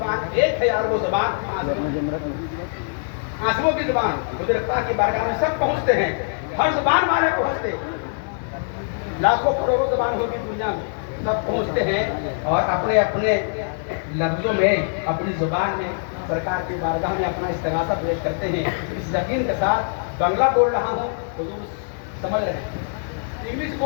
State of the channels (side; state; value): right; silent; 63 dB below the other